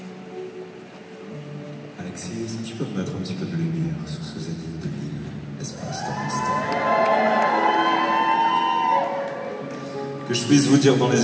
Alexis, est-ce que tu peux me mettre un petit peu de lumière sur ce zénith de Lille, espace dans l'instant? Que je puisse vous dire dans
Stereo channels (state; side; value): identical; both; correlation 1.00